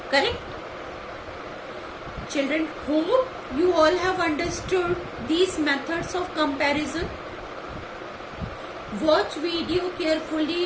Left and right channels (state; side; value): identical; both; correlation 1.00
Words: Correct? Children, hope you all have understood these methods of comparison. Watch video